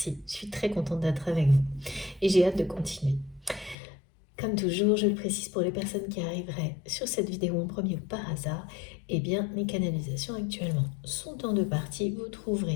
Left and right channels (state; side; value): drops out; right; at 3.8 s